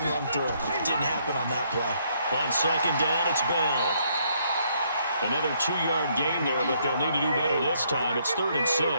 run through. It didn't happen on that play. On 2nd down, it's Bell. Another 2-yard gain there, but they'll need to do better this time. It's 3rd and 6.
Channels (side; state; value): both; inverted; correlation -0.70